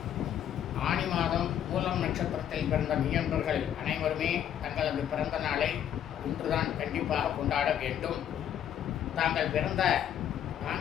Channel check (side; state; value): right; quieter; 10.1 dB